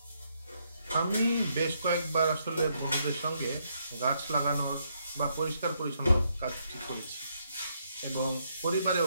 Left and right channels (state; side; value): inverted; both; correlation -0.75